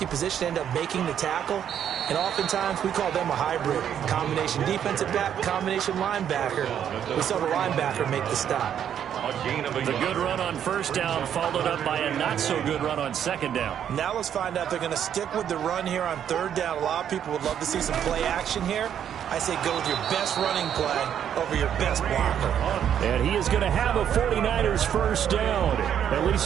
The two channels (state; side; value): quieter; left; 9.3 dB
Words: position ended up making the tackle, and oftentimes we call them a hybrid. Combination defensive back, combination linebacker. We saw the linebacker make the stop. The good run on first down followed up by a not-so-good run on second down. Now let's find out if they're going to stick with the run here on third down. A lot of people would love to see some play action here. I say go with your best running play over your best blocker. And he is going to have a 49ers first down. At